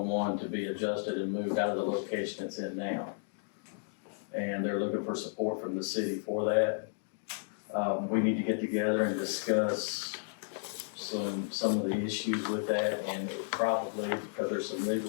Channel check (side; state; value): right; silent; digital silence